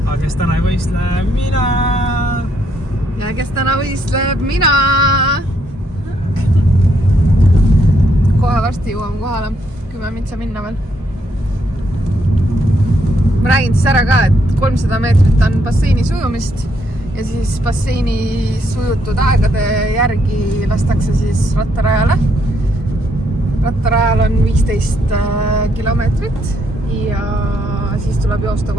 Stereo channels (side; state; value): both; normal; correlation 0.74